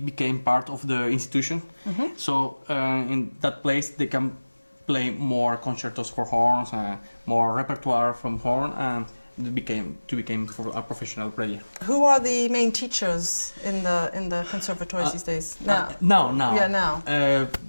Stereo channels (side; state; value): both; inverted; correlation -1.00